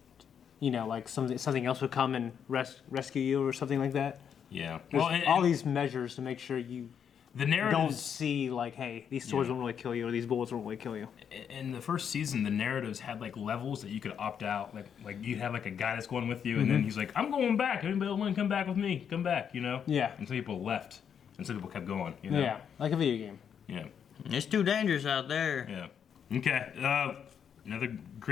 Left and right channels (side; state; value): right; quieter; 7.9 dB